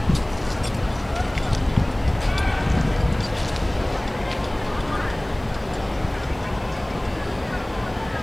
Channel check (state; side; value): noise; right; hiss, 27 dB below the sound